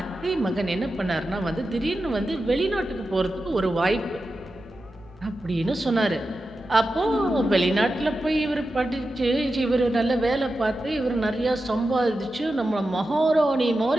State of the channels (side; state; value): right; noise; hum, 26 dB below the sound